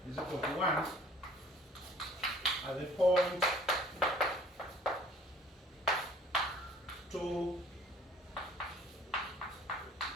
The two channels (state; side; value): normal; both; correlation 0.52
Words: is equal to 1. at the point 2